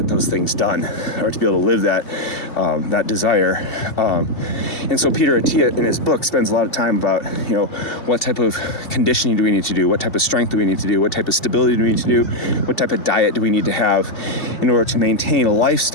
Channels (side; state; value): right; late; 2.7 ms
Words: those things done, or to be able to live that desire. And so Peter Attia in his book spends a lot of time about, you know, what type of conditioning do we need to do? What type of strength do we need to do? What type of stability do we need to do? What type of diet do we need to have in order to maintain a